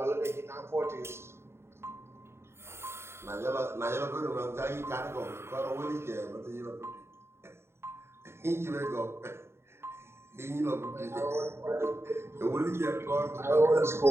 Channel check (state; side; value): late; left; 0.12 ms